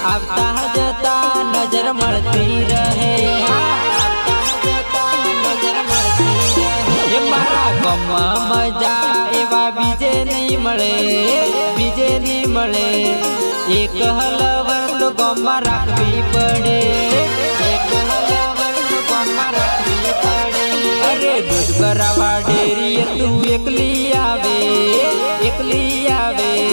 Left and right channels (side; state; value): both; inverted; correlation -1.00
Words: आवता जता नजर मळती रहे मारा गम मजा एवा बीजे नहीं मळे एक हलवर तो गम राखवी पड़े अरे दूध भरावा डेरी तू एकली आवे